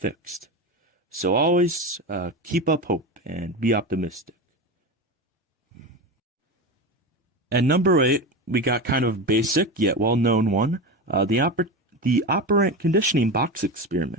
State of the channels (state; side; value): normal; both; correlation 0.22